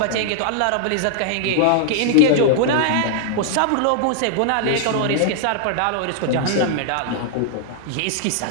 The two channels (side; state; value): both; different; correlation -0.01